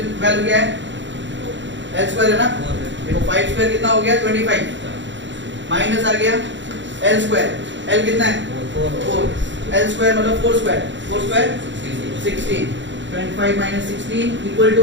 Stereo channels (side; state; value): left; late; 0.54 ms